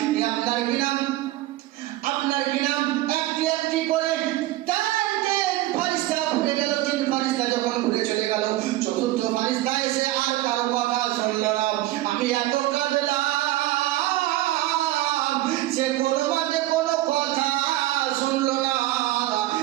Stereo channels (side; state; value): left; quieter; 16.2 dB